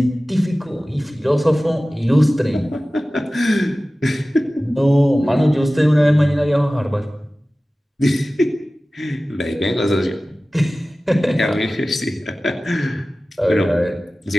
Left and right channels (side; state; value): both; normal; correlation 0.97